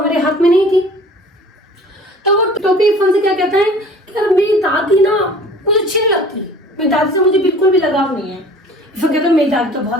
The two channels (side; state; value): both; normal; correlation 0.47